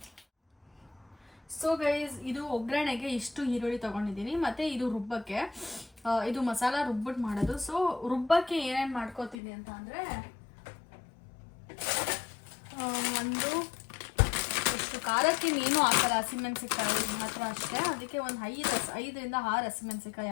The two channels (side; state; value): right; drops out; at 9.3 s